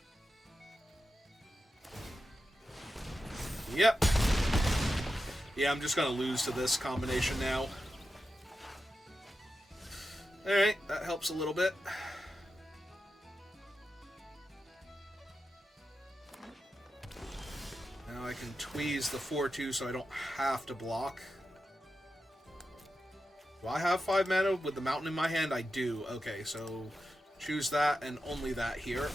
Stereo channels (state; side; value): normal; both; correlation 0.90